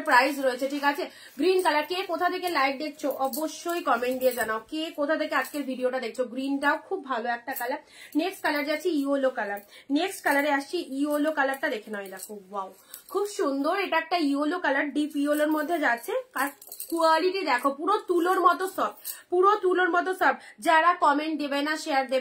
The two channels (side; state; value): both; identical; correlation 1.00